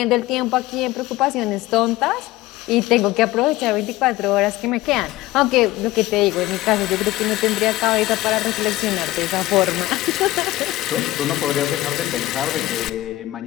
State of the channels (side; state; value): right; quieter; 17.5 dB